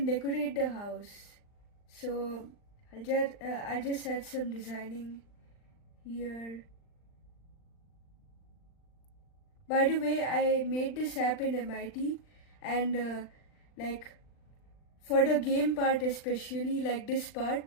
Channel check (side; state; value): right; late; 39 ms